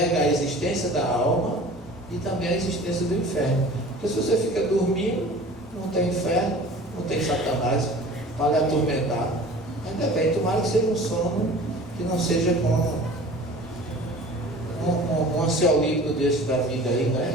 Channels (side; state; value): both; normal; correlation 0.43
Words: a existência da alma e também a existência do inferno. Porque se você fica dormindo, não tem inferno, não tem Satanás para lhe atormentar. Ainda bem, tomara que seja um sono que não seja como um ansiolítico desse da vida aí,